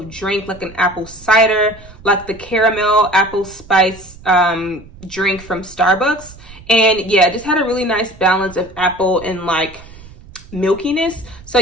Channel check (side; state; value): right; noise; rumble, 20 dB below the sound